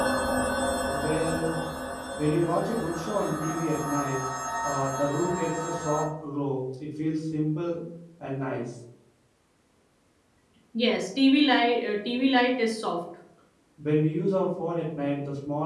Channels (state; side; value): identical; both; correlation 1.00